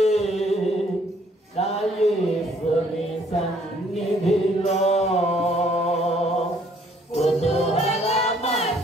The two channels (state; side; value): normal; both; correlation 0.63